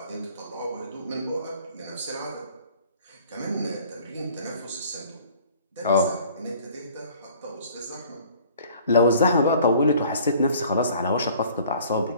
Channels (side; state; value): both; inverted; correlation -0.52